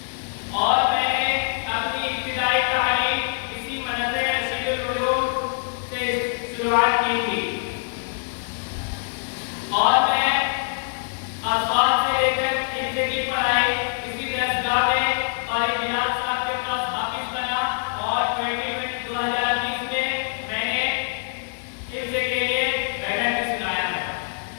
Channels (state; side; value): silent; right; digital silence